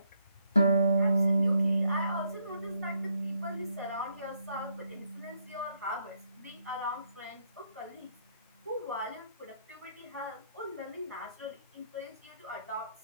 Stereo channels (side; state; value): both; inverted; correlation -0.74